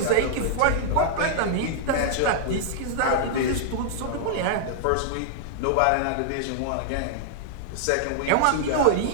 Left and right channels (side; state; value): both; different; correlation -0.01